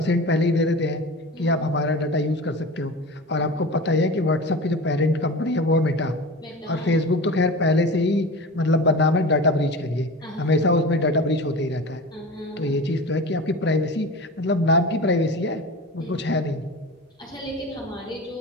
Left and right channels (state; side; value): normal; both; correlation 0.32